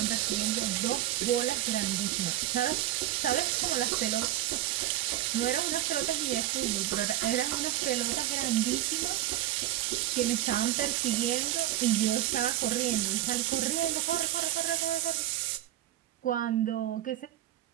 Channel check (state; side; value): quieter; left; 13.8 dB